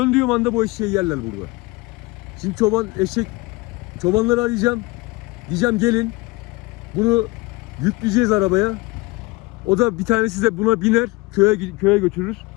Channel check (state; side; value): quieter; right; 23.1 dB